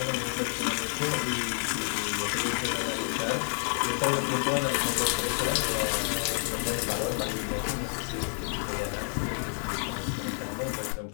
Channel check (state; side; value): silent; right; 58 dB below the other